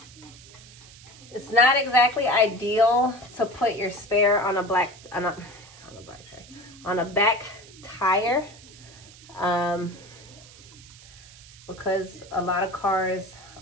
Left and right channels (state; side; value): noise; right; hiss, 21 dB below the sound